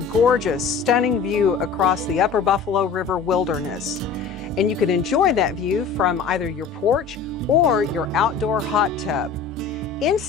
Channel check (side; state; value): right; quieter; 5.7 dB